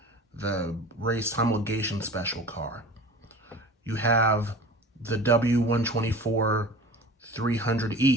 the race homologation special car. You have the W124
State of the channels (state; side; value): normal; both; correlation 0.39